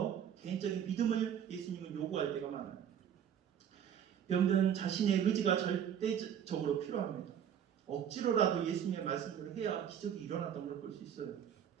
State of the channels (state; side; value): quieter; left; 9.0 dB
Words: 개인적인 믿음을 예수님은 요구할 때가 많아요. 병든 자신의 의지가 절대적으로 필요합니다. 억지로라도 예수님의 말씀대로 해야 기적이 일어났던 걸 볼 수 있어요.